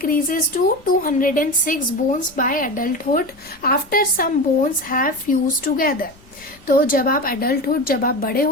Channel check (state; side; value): noise; left; rumble, 26 dB below the sound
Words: to 206 bones by adulthood after some bones have fuse together. तो जब आप अडल्टहुड, जब आप बड़े